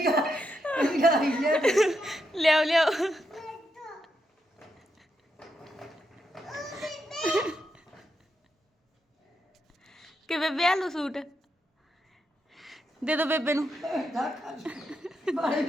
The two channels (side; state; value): both; normal; correlation 0.83